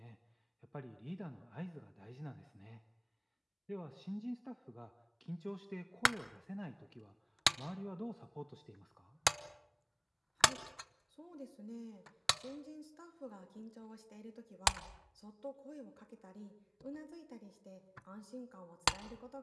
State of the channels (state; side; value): identical; both; correlation 1.00